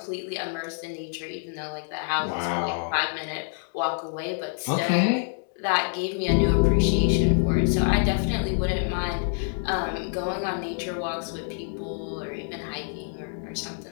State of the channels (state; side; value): silent; right; digital silence